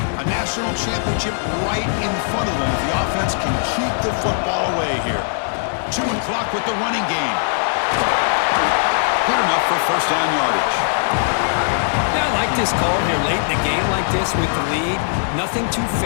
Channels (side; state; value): right; silent; digital silence